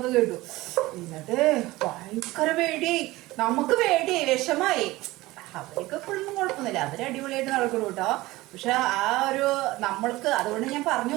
കേട്ടു. എന്നിട്ട് ഭയങ്കര പേടിയായി. നമുക്ക് പേടിയായി, വിഷമായി. അവർക്ക് എപ്പോഴൊന്നും കുഴപ്പമൊന്നുമില്ല, അവർ അടിപൊളിയായിട്ട് നടക്കണം കേട്ടോ. പക്ഷെ ആ ഒരു നമ്മൾക്ക്, അതുകൊണ്ട് ഞാൻ പറഞ്ഞു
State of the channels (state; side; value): quieter; left; 19.1 dB